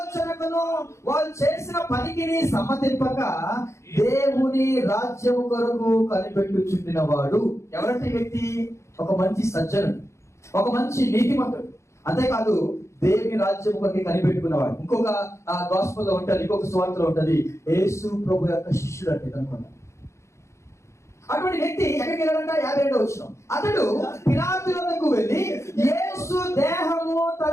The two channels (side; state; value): right; late; 0.14 ms